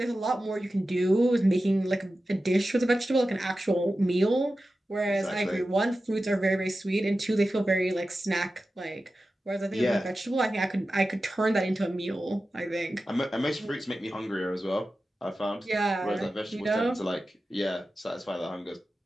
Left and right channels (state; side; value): normal; both; correlation 0.93